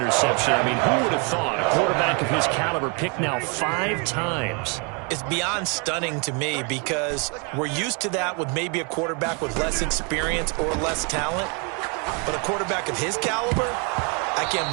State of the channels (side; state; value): left; quieter; 34.3 dB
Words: I mean, who would have thought a quarterback of his caliber picked now 5 times? It's beyond stunning to me because we're used to that with maybe a quarterback with less experience or less talent. But a quarterback of his caliber, I can't